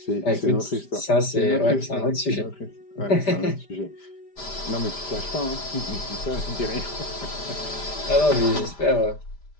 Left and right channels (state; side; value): late; right; 5.0 ms